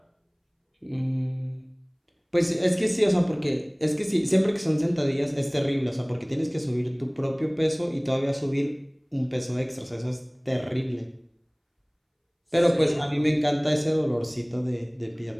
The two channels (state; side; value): identical; both; correlation 1.00